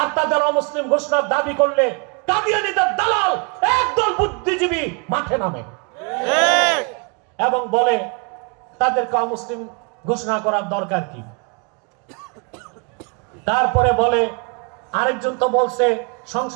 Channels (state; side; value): quieter; left; 33.1 dB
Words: তাদের অমুসলিম ঘোষণার দাবি করলে কাদিয়ানীদের দালাল একদল বুদ্ধিজীবী মাঠে নামে এবং বলে তাদেরকে অমুসলিম ঘোষণা করার দরকার কি। তারপরে বলে আরেকজন তো বলছে